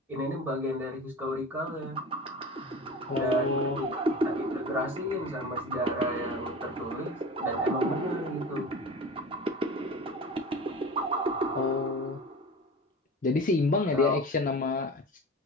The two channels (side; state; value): both; normal; correlation 0.34